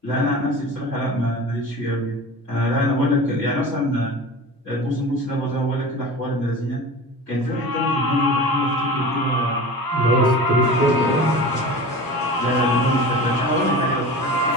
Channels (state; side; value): normal; both; correlation 0.35